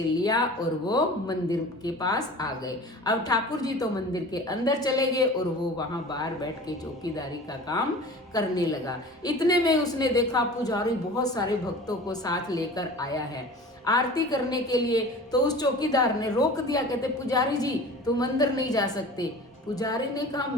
और वो मंदिर के पास आ गए। अब ठाकुर जी तो मंदिर के अंदर चले गए और वो वहां बाहर बैठ के चौकीदारी का काम करने लगा। इतने में उसने देखा पुजारी बहुत सारे भक्तों को साथ लेकर आया है आरती करने के लिए। तो उस चौकीदार ने रोक दिया। कहते पुजारी जी तुम अंदर नहीं जा सकते, पुजारी ने कहा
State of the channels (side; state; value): both; normal; correlation 0.40